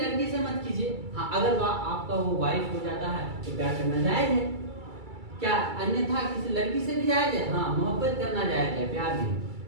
से मत कीजिए। हाँ, अगर आपका वो वाइफ हो जाता है तो प्यार करना जायज है क्या, अन्यथा किसी लड़की से भी जायज है। हाँ, मोहब्बत करना जायज है, प्यार नहीं,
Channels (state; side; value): late; left; 2.3 ms